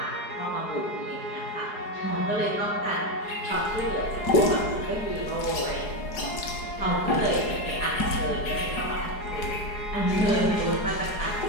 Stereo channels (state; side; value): late; right; 4.8 ms